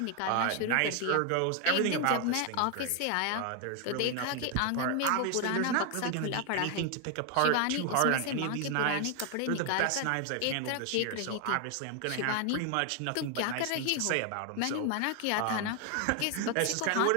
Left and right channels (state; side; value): different; both; correlation 0.01